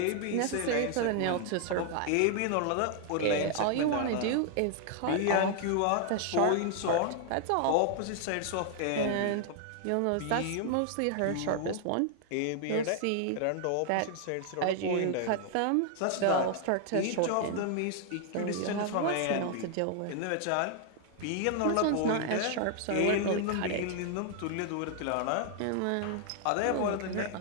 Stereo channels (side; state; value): both; different; correlation 0.00